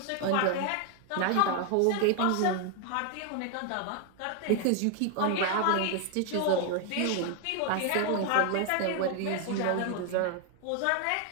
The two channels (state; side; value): different; both; correlation 0.00